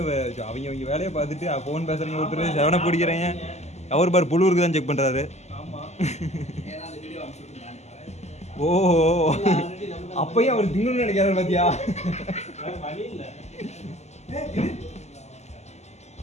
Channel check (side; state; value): right; late; 0.33 ms